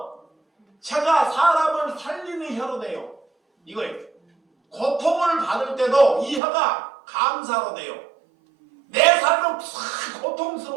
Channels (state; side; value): drops out; left; at 6.4 s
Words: 혀가 사람을 살리는 혀로 돼요. 이거예요. 고통을 받을 때도 이 혀가 감사로 돼요. 내 삶은